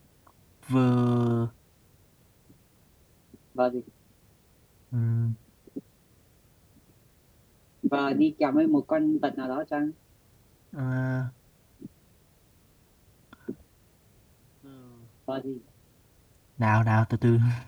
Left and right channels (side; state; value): both; identical; correlation 1.00